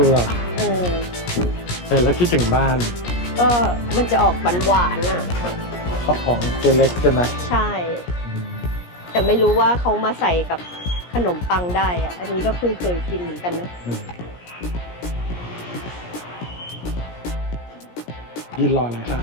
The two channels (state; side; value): late; right; 17 ms